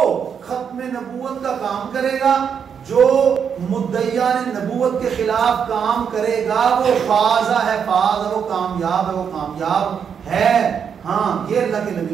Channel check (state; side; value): quieter; left; 7.3 dB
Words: ختم نبوت کا کام کرے گا، جو مدعیان نبوت کے خلاف کام کرے گا، وہ فازہ ہے، فاز ہے، وہ کامیاب ہے، وہ کامیاب ہے. ہاں یہ اللہ کے